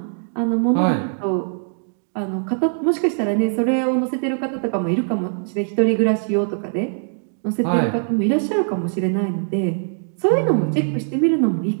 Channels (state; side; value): silent; left; digital silence